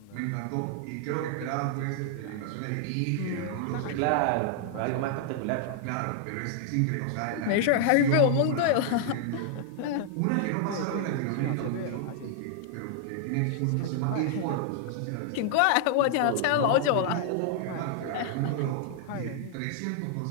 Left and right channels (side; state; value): both; different; correlation -0.01